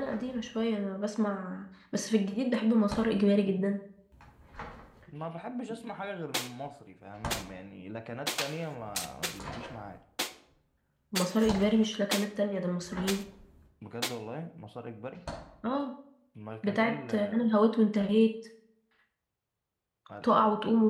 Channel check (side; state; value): both; identical; correlation 1.00